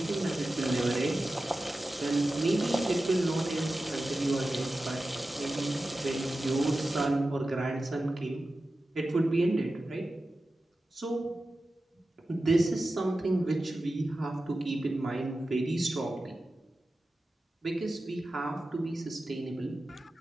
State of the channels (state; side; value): normal; both; correlation 0.94